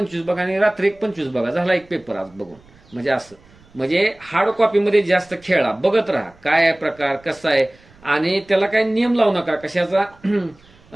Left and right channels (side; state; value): right; noise; rumble, 28 dB below the sound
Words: बघा आणि रात्री एक 25 बघा, झाला एक पेपर आज बघून. म्हणजे असं, म्हणजे हार्ड कॉपीमध्ये जास्त खेळा, बघत राहा काय आहे प्रकार, कसा आहे. आणि त्याला काही नियम लावू नका कशाचा,